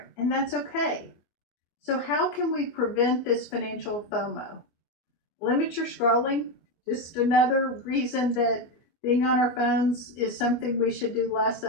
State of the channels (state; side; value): late; right; 24 ms